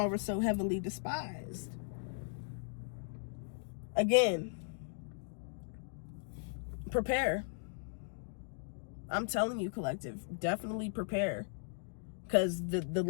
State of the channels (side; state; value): right; silent; digital silence